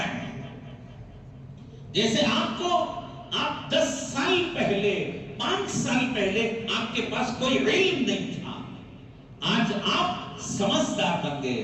ہے. جیسے آپ 10 سال پہلے 5 سال پہلے آپ کے پاس کوئی علم نہیں تھا, آج آپ سمجھدار بن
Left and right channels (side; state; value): both; identical; correlation 1.00